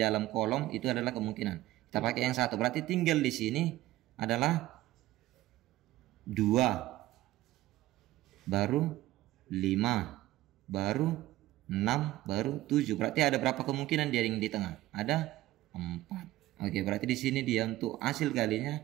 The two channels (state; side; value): quieter; left; 16.3 dB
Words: kolom itu adalah kemungkinan. Kita pakai yang 1. Berarti tinggal di sini adalah 2, baru 5, baru 6, baru 7. Berarti ada berapa kemungkinan dia yang di tengah? Ada 4. Oke, berarti di sini dia untuk hasil kalinya